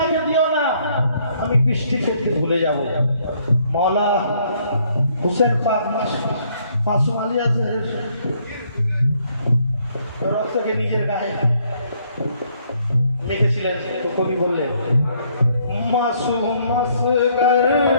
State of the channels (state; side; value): inverted; both; correlation -0.67